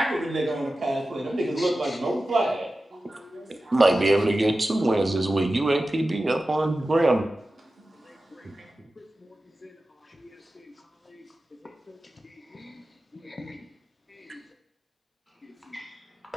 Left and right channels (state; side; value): normal; both; correlation 0.94